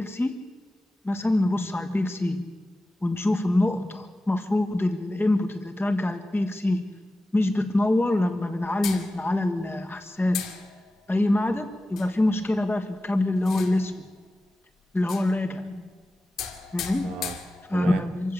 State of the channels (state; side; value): normal; both; correlation 0.94